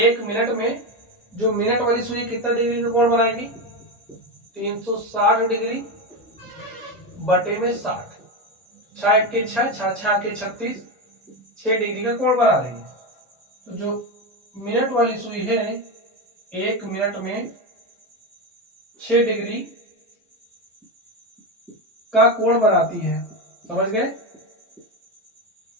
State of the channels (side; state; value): both; normal; correlation 0.15